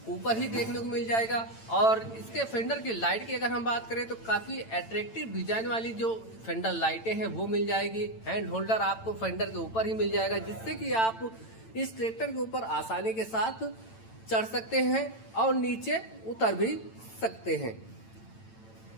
ऊपर ही देखने को मिल जाएगा। और इसके फेंडर की लाइट की अगर हम बात करें तो काफी अट्रैक्टिव डिजाइन वाली जो फेंडर लाइटें हैं वो मिल जाएगी। हैंड होल्डर आपको फेंडर के ऊपर ही मिल जाएगा, जिससे कि आप इस ट्रैक्टर के ऊपर आसानी के साथ चढ़ सकते हैं और नीचे उतर भी सकते हैं।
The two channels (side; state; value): right; late; 8.9 ms